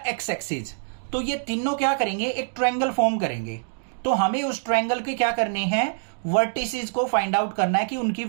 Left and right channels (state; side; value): silent; left; digital silence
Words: x axis, तो ये तीनों क्या करेंगे, एक ट्रायंगल फॉर्म करेंगे। तो हमें उस ट्रायंगल के क्या करने हैं, वर्टिसेस को फाइंड आउट करना है कि उनकी